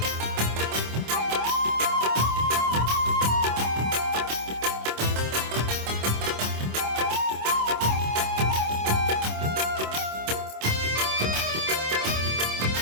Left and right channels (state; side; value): late; left; 26 ms